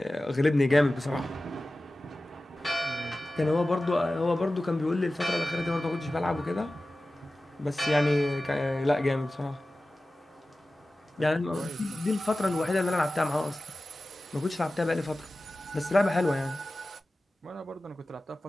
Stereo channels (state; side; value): normal; both; correlation 0.96